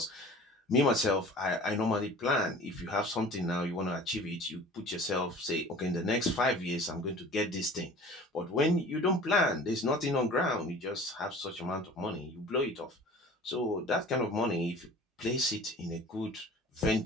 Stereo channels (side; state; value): both; normal; correlation 0.43